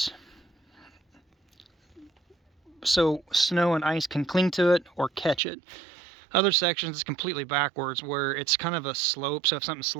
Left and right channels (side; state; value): left; drops out; at 5.4 s